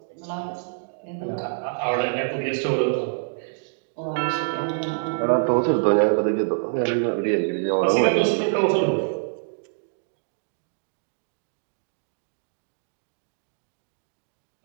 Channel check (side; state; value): left; silent; digital silence